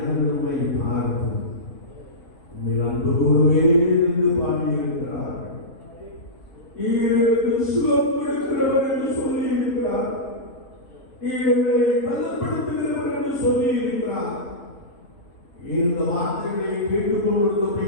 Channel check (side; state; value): right; late; 7.1 ms